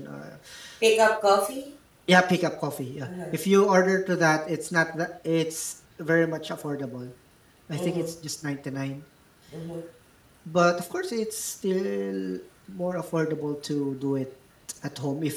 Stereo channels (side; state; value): both; identical; correlation 1.00